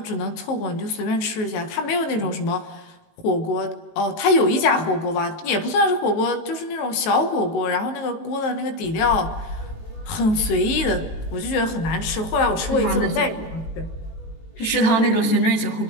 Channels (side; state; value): right; late; 18 ms